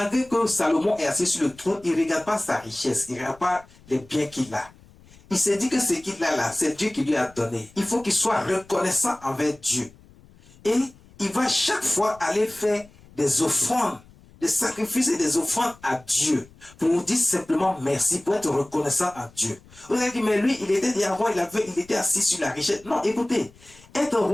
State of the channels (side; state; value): left; noise; rumble, 25 dB below the sound